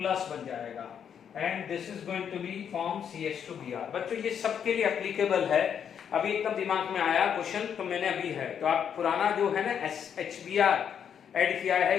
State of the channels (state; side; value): quieter; right; 8.2 dB